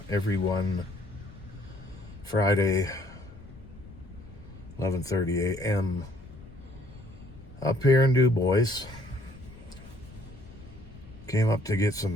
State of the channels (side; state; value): left; noise; rumble, 19 dB below the sound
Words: Friday, 11:30 a.m. up here in Du Bois. Came up to get